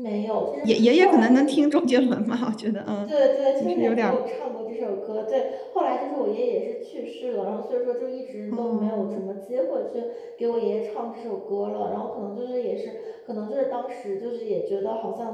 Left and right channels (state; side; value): identical; both; correlation 1.00